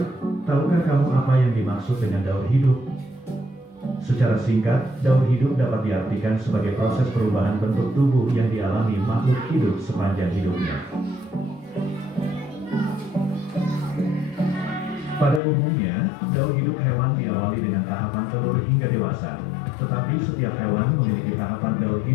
tahukah kamu apa yang dimaksud dengan daur hidup? Secara singkat, daur hidup dapat diartikan sebagai proses perubahan bentuk tubuh yang dialami makhluk hidup sepanjang hidupnya. Pada umumnya, daur hidup hewan diawali dengan tahapan telur hingga dewasa, tetapi setiap hewan memiliki tahapan daur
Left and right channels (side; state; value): right; drops out; at 15.4 s